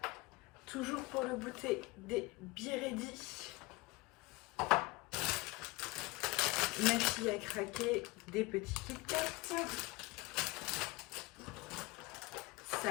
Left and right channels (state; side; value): quieter; right; 23.2 dB